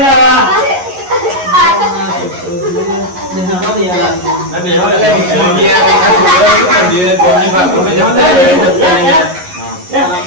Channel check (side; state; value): left; late; 11 ms